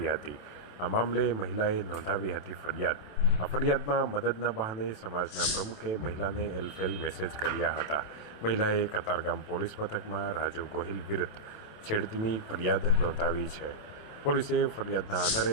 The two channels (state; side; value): late; right; 27 ms